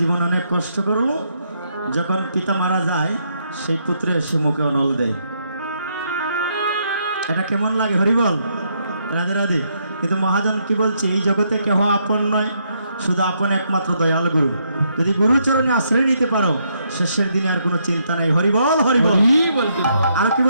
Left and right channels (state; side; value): inverted; both; correlation -0.75